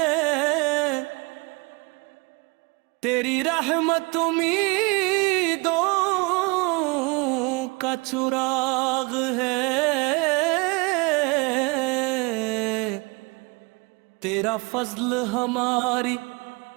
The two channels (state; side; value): quieter; left; 28.3 dB